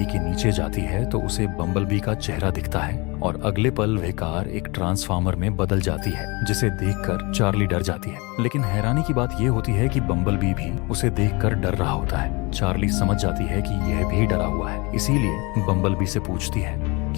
के नीचे जाती है तो उसे बम्बलबी का चेहरा दिखता है और अगले पल वह कार एक ट्रांसफार्मर में बदल जाती है, जिसे देखकर चार्ली डर जाती है। लेकिन हैरानी की बात यह होती है कि बम्बलबी भी उसे देखकर डर रहा होता है। चार्ली समझ जाती है कि यह भी डरा हुआ है, इसीलिए बम्बलबी से पूछती है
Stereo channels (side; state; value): right; quieter; 27.2 dB